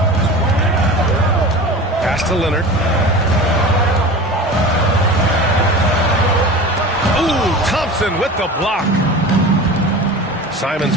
Pass to Leonard. Ooh, Thompson with the block. Simons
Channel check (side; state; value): both; normal; correlation 0.34